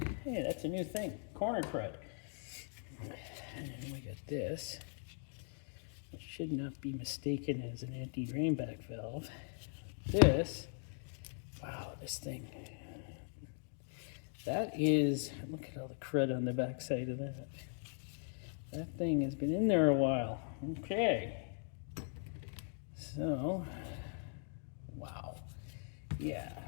Hey, that's a new thing, corner crud. And we got this. It should not be mistaken as an anti-drainback valve. This, wow, this thing. That is, look at all the crud on the back side of that. That thing has been in there a while. Okay. So, wow. Yeah.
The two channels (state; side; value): silent; right; 51 dB below the other